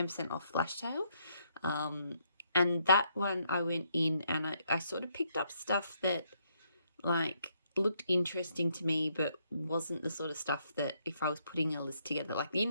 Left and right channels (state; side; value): inverted; both; correlation -0.73